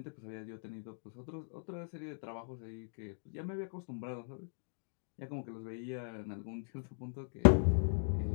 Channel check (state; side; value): silent; right; digital silence